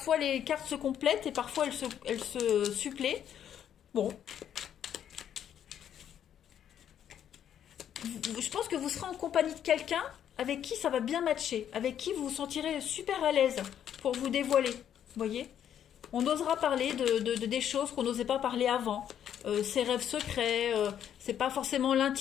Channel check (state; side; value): quieter; right; 9.7 dB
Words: les cartes se complètent et parfois elles se suppléent. Bon. Je pense que vous serez en compagnie de quelqu'un avec qui ça va bien matcher, avec qui vous vous sentirez super à l'aise pour vous dévoiler. Vous voyez? On osera parler des choses qu'on n'osait pas parler avant. Ses rêves secrets, c'est pas forcément